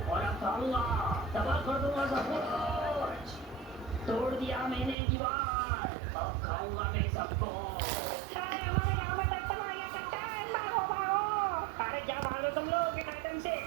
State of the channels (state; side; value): drops out; left; at 5.0 s